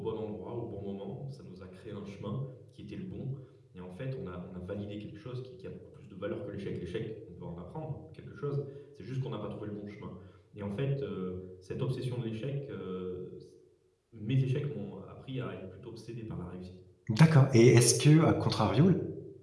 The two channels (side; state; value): both; identical; correlation 1.00